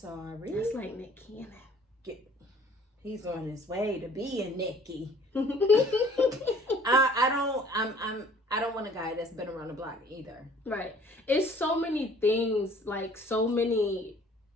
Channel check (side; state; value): both; normal; correlation 0.54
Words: That's like Nick Cannon. He's on his way to being Nicky. I don't want a guy that's been around the block either. Right. It's so many things, like it's so